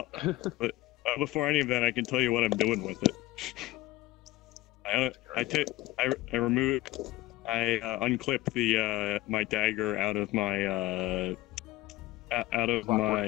but before any of that, I can tell you what I'm doing with it. I unclip the my dagger out of my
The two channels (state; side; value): quieter; right; 17.8 dB